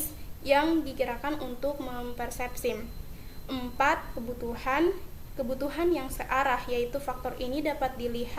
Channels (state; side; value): identical; both; correlation 1.00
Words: yang digerakkan untuk mempersepsi. 4. Kebutuhan yang searah, yaitu faktor ini dapat